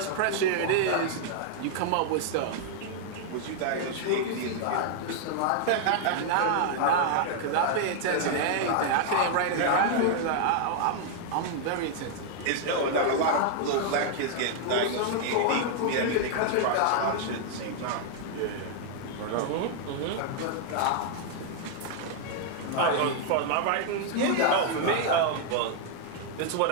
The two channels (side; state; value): both; different; correlation 0.00